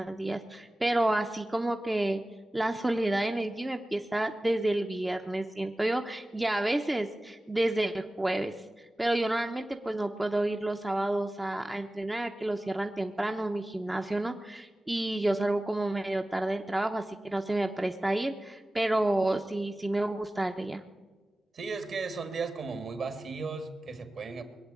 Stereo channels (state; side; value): normal; both; correlation 0.96